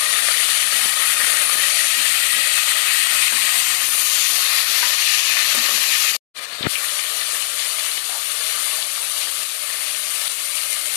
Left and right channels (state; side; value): silent; right; digital silence